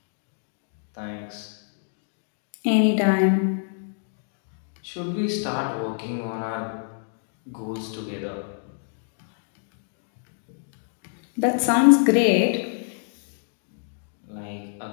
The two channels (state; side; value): silent; right; digital silence